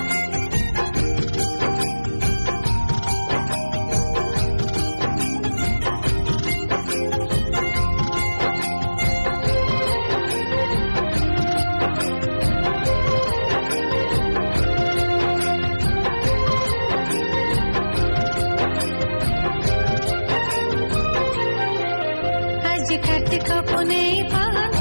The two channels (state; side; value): inverted; both; correlation -1.00